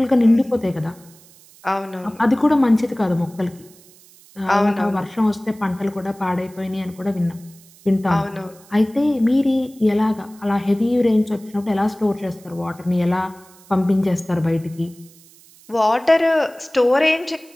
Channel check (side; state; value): right; noise; hiss, 26 dB below the sound